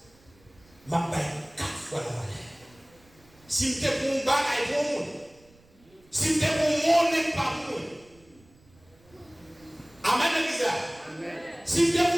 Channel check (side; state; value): right; noise; rumble, 29 dB below the sound